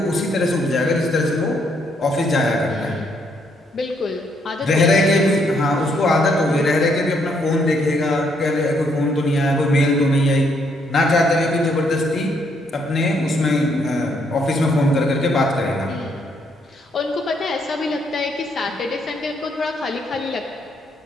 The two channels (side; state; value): both; normal; correlation 0.72